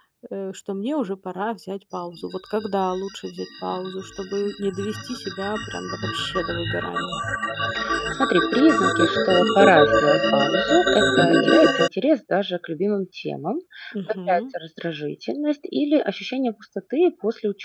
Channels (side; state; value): both; identical; correlation 1.00